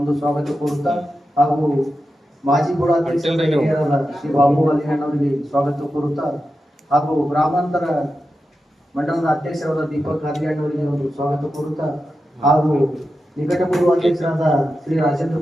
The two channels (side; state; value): both; normal; correlation 0.90